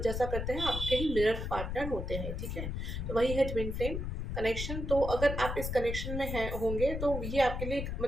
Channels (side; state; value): left; noise; rumble, 3 dB below the sound